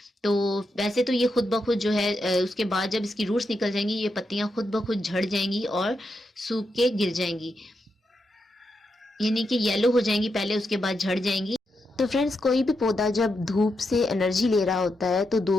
तो वैसे तो ये खुद ब खुद जो है उसके बाद जब इसकी रूट्स निकल जाएंगी ये पत्तियां खुद ब खुद झड़ जाएंगी और सूख के गिर जाएंगी, यानी कि येलो हो जाएंगी पहले, उसके बाद झड़ जाएंगी। तो फ्रेंड्स, कोई भी पौधा जब धूप से एनर्जी ले रहा होता है तो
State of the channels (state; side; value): normal; both; correlation 0.84